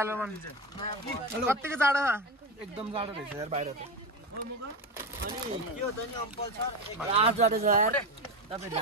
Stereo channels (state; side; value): normal; both; correlation 0.18